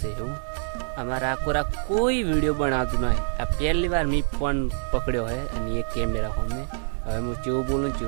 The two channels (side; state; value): left; silent; digital silence